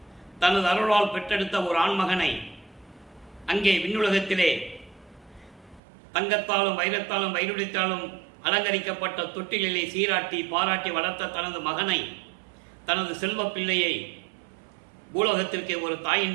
தனது அருளால் பெற்றெடுத்த ஒரு ஆண்மகனை அங்கே விண்ணுலகத்திலே தங்கத்தாலும் வைரத்தாலும் வைடூரியத்தாலும் அலங்கரிக்கப்பட்ட தொட்டிலே சீராட்டி பாராட்டி வளர்த்த தனது மகனை, தனது செல்வ பிள்ளையை பூலோகத்திற்கு ஒரு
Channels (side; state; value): left; drops out; at 5.8 s